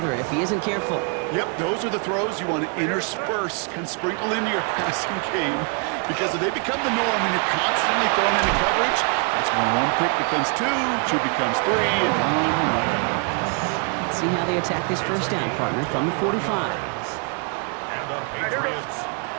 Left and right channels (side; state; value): left; quieter; 38.6 dB